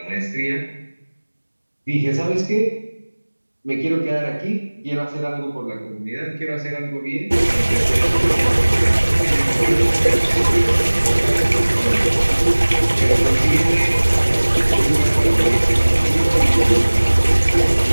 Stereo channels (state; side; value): inverted; both; correlation -1.00